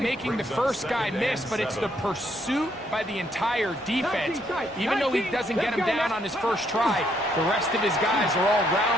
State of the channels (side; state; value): both; normal; correlation 0.72